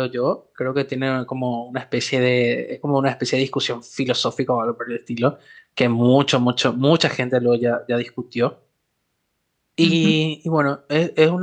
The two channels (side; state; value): both; identical; correlation 1.00